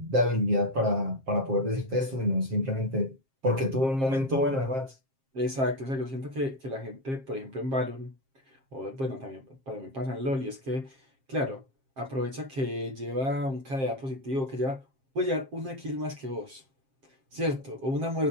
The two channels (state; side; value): late; left; 7.5 ms